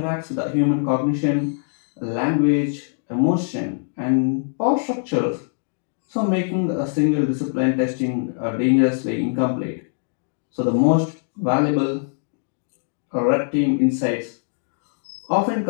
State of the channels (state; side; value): silent; right; digital silence